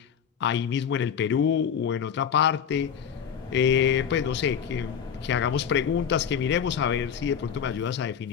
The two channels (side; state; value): right; quieter; 7.8 dB